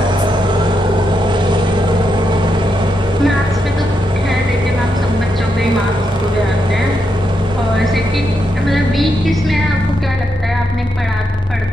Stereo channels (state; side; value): normal; both; correlation 0.82